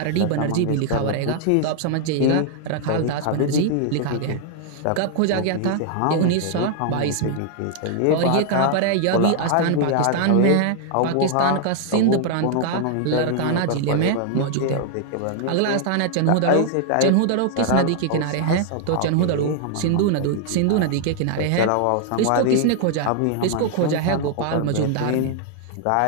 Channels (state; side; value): different; both; correlation -0.01